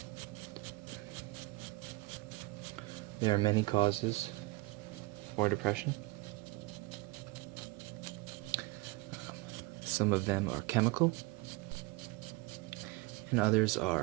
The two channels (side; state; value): left; quieter; 23.2 dB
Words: There are many causes for depression. Some of them are chemical, and others